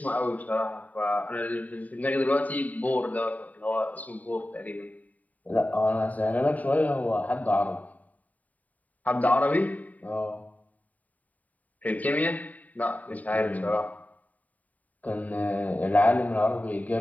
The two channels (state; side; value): late; right; 0.073 ms